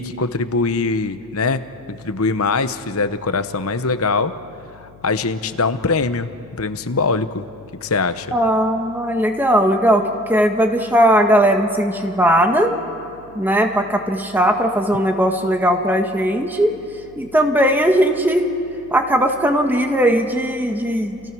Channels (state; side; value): noise; left; hum, 26 dB below the sound